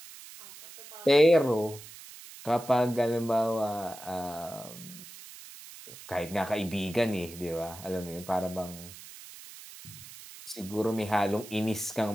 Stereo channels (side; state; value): right; noise; hiss, 16 dB below the sound